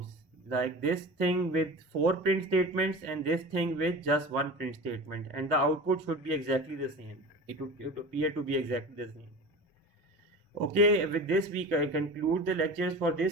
like this thing with 4 print statements and this thing with just 1 print statement, and the output should be exactly the same. It would appear to be exactly the same. Okay, with this week I conclude the lectures for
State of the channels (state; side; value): normal; both; correlation 0.33